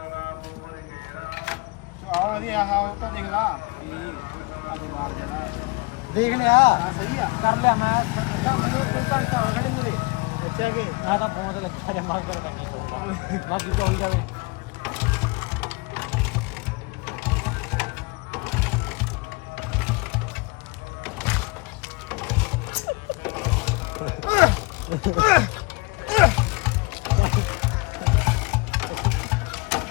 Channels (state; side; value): quieter; right; 27.1 dB